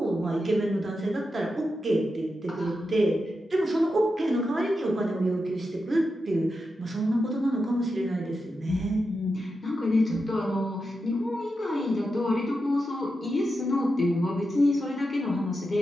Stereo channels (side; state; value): both; normal; correlation 0.88